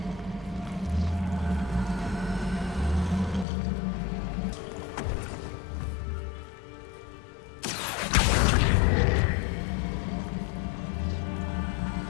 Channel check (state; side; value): drops out; right; at 3.5 s